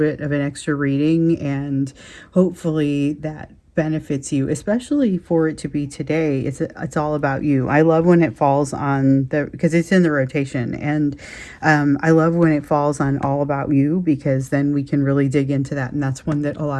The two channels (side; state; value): both; identical; correlation 1.00